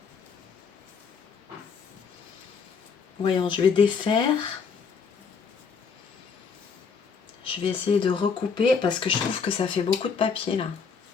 Voyons, je vais défaire. Je vais essayer de recouper parce que je trouve que ça fait beaucoup de papier là.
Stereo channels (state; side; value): quieter; right; 5.7 dB